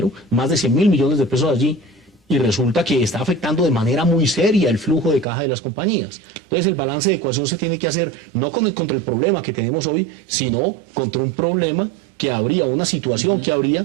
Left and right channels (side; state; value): left; drops out; at 5.2 s